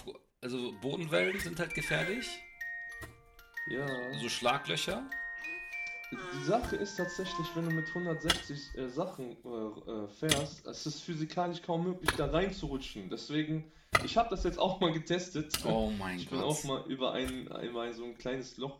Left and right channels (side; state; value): both; identical; correlation 1.00